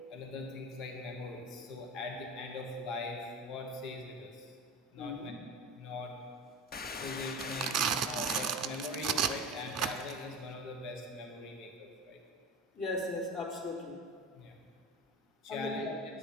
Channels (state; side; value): normal; both; correlation 0.31